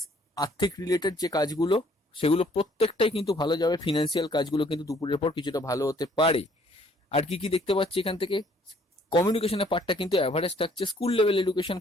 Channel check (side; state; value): both; normal; correlation 0.62